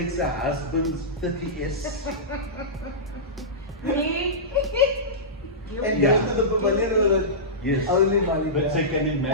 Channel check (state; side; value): normal; both; correlation -0.16